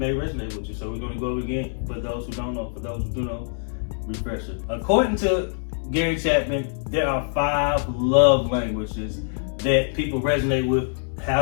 with you. So we're going to go over it again for those who don't know. For those who do know, refresher. According to Gary Chapman, there are 5 love languages that people resonate with, how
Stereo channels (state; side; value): silent; right; digital silence